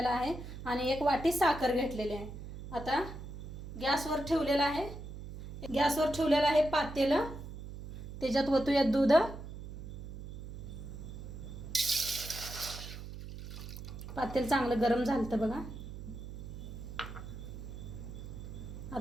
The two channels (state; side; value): noise; right; hum, 10 dB below the sound